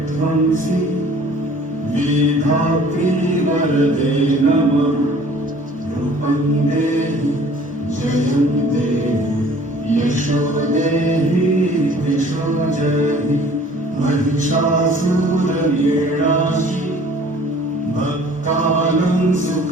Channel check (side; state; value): both; normal; correlation 0.51